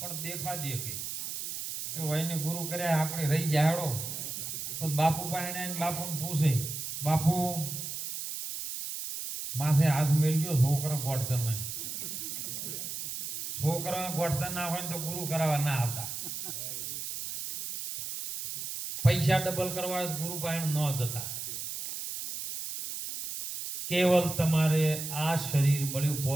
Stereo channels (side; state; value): right; noise; hiss, 6 dB below the sound